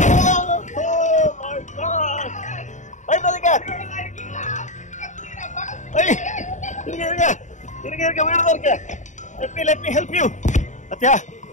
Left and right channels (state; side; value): late; right; 0.35 ms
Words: Oh my god, பயப்படாதீங்க. இருங்க இருங்க இருங்க இருங்க, வீடு இருக்கு. let me help you. அத்தியா